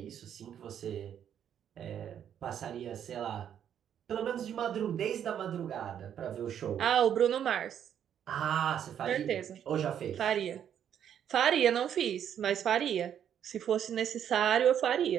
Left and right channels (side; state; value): left; quieter; 9.3 dB